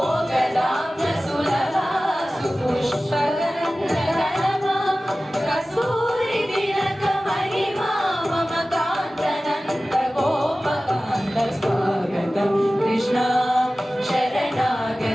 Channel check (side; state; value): both; normal; correlation 0.96